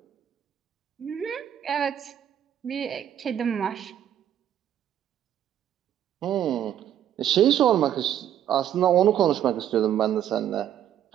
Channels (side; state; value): left; quieter; 10.5 dB